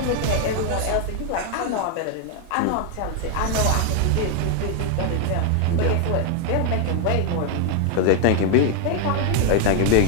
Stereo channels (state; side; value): different; both; correlation 0.00